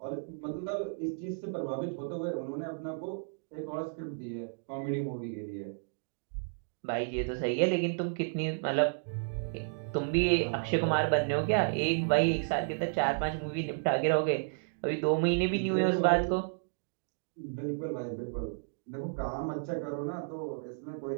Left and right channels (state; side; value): silent; left; digital silence